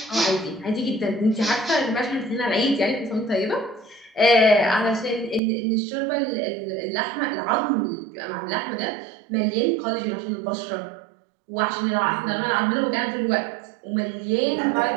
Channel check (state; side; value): drops out; left; at 5.4 s